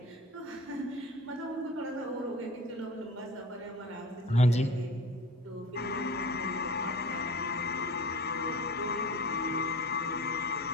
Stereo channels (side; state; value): both; normal; correlation 0.38